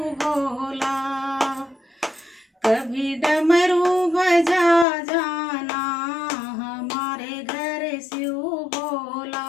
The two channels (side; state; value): right; drops out; at 4.9 s